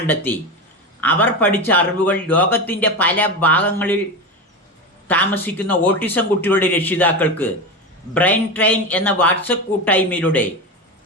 അവർ പഠിച്ച അറിവുകൾ ലോകത്തിൻ്റെ പല ഭാഗങ്ങളിൽ താമസിക്കുന്ന ഓട്ടിസം കുട്ടികളുടെ രക്ഷിതാക്കൾക്ക് ബ്രെയിൻ ട്രെയിൻ എന്ന വാട്സപ്പ് കൂട്ടായ്മയിലൂടെ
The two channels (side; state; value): both; normal; correlation 0.20